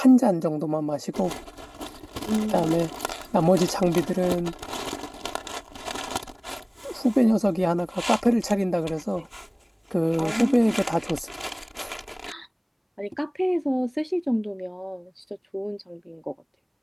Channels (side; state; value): both; identical; correlation 1.00